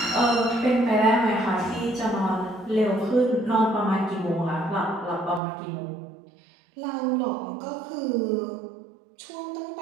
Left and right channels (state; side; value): drops out; left; at 5.4 s